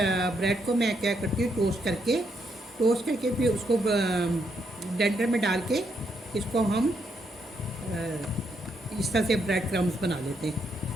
ब्रेड को मैं क्या करती हूँ, टोस्ट करके फिर उसको ब्लेंडर में डाल के इसको हम इस तरह से ब्रेड क्रम्स बना लेते हैं।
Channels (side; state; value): both; normal; correlation 0.77